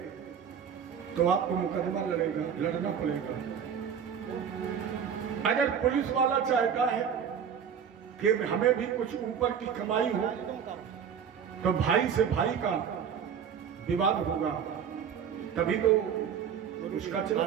तो आपको मुकदमा लड़ना पड़ेगा। अगर पुलिस वाला चाहता है कि हमें भी कुछ ऊपर की कमाई हो, तो भाई से भाई का विवाद होगा, तभी तो उसका चला।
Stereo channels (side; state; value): left; quieter; 7.7 dB